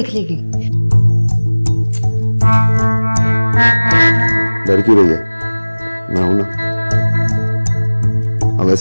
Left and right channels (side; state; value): both; inverted; correlation -1.00